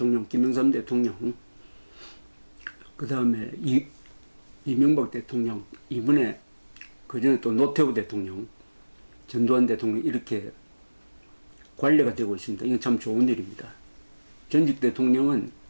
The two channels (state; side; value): inverted; both; correlation -1.00